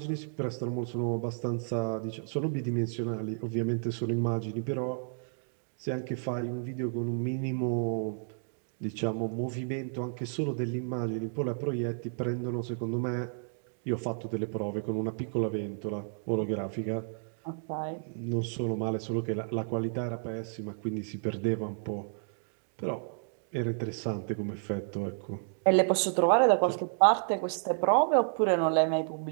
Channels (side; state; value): left; silent; digital silence